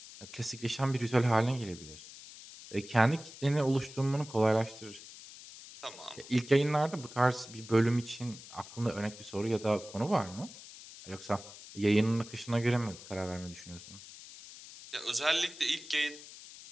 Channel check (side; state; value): left; noise; hiss, 16 dB below the sound